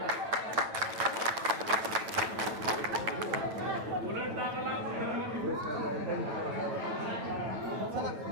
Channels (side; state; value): left; late; 9.1 ms